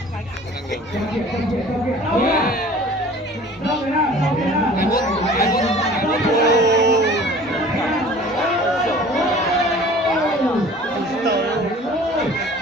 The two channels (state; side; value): normal; both; correlation 0.47